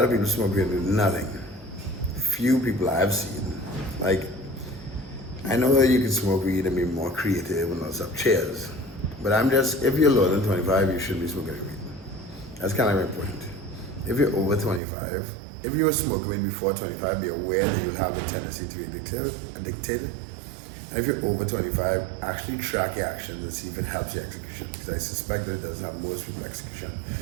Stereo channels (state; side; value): drops out; left; at 14.8 s